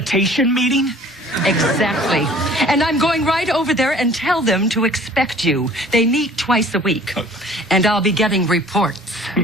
meeting? Exactly. And I'm going right over there and tell them to expect you. They meet twice a week. And I'll be getting reports.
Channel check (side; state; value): both; normal; correlation 0.51